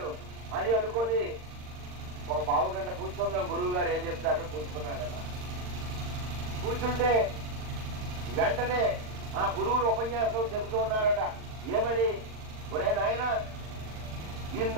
అని అనుకొని ఒక పావు గంట కూర్చుందాం, గురువు గారు ఏం చెప్తారని కూర్చున్నాడట. కూర్చుంటే వెంటనే ఆ గురువులు ఉపన్యాసం చెబుతూ ఉన్నారట. ఏమని? ఒరే నాయన,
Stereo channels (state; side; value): late; left; 39 ms